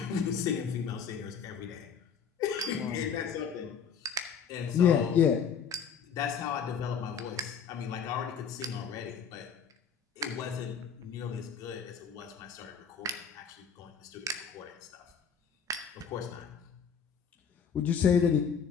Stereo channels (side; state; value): right; quieter; 6.8 dB